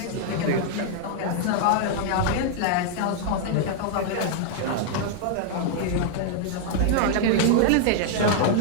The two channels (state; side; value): different; both; correlation -0.01